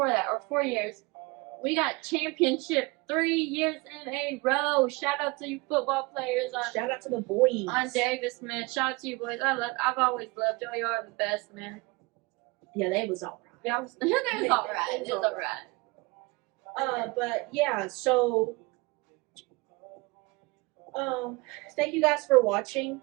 that, or 4 years, we got championship 3 years in a row. Shout out to you football players Shout out to the boys. on Davis, man. Shout out to you boys. I've always loved y'all. You are the best, man. Yeah, they was all right. Yeah, it was all right. It was all right. But yeah, so thank you guys for watching.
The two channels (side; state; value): left; quieter; 25.2 dB